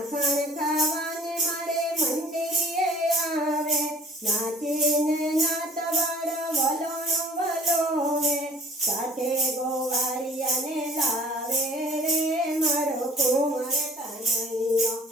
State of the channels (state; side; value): normal; both; correlation 0.50